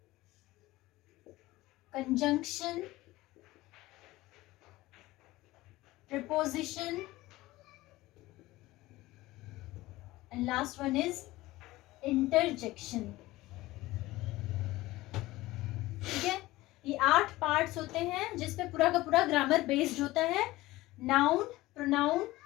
conjunction, preposition, and last one is interjection। ठीक है, ये 8 पार्ट्स होते हैं जिसपे पूरा का पूरा ग्रामर बेस्ड होता है। Noun, pronoun,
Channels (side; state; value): right; quieter; 18.3 dB